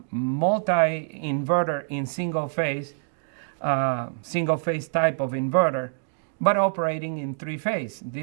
multi-inverter in single phase type of inverter, but operating in three phase.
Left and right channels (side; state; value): left; silent; digital silence